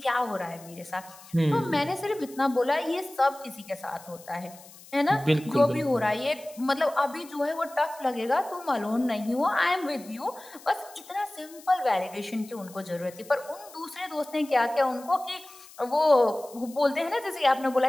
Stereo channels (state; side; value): noise; left; hiss, 21 dB below the sound